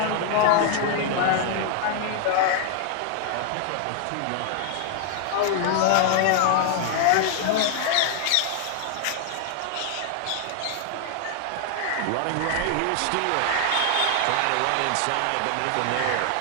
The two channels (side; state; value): both; different; correlation 0.00